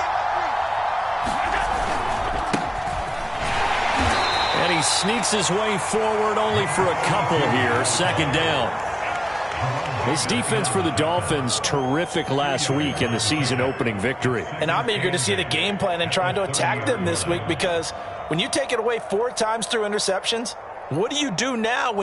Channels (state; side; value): identical; both; correlation 1.00